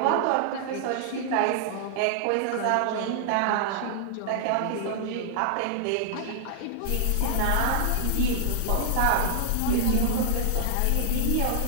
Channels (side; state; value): both; different; correlation -0.01